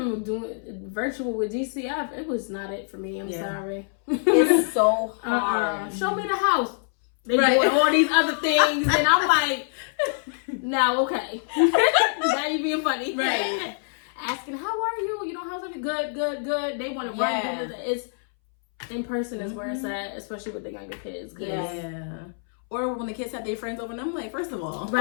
doing virtual with DCF. It was not it for me. I'm sorry. It's so hard. Show me the house. They doing all these other things. And I'm like, now, okay. Now you being funny. Right. Asking, how are you? How's everything? Good. They want to run. It's in person is where it's at, especially with the younger kids. Yeah. Or when the kids have their friends over, and I'm like, first of all,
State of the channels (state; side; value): silent; right; 61 dB below the other